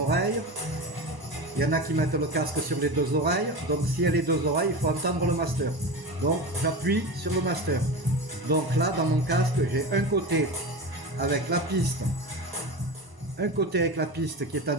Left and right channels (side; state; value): left; late; 1.0 ms